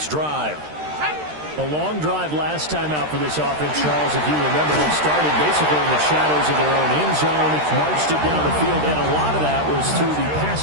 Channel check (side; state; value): left; late; 13 ms